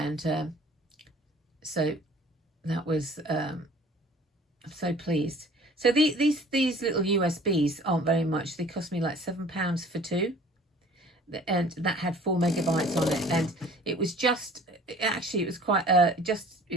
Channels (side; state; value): both; normal; correlation 0.50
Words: so that was, I'm so pleased. So these little USBs aren't very much. They cost me like £7 for two. And that had 4 megabytes on it. And it was just, actually it was quite,